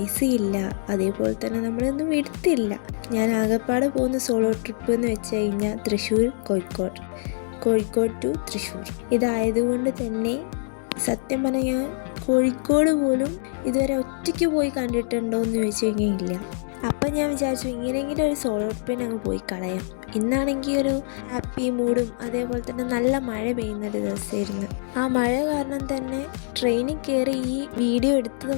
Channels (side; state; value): right; silent; digital silence